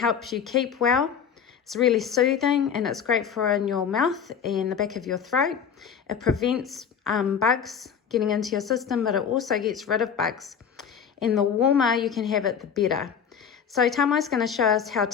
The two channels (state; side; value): quieter; right; 7.4 dB